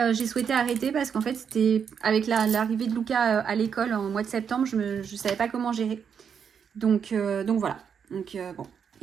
j'ai souhaité arrêter parce qu'en fait, c'était avec l'arrivée de Luca à l'école en mois de septembre, je ne savais pas comment gérer. Donc voilà. Donc bon,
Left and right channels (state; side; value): quieter; left; 7.2 dB